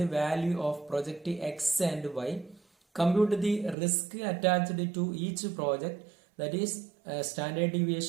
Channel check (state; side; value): drops out; left; at 3.8 s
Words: value of project X and Y. Compute the risk attached to each project, that is standard